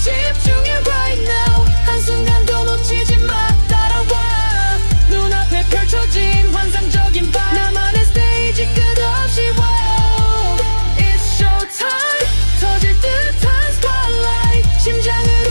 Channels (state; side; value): inverted; both; correlation -1.00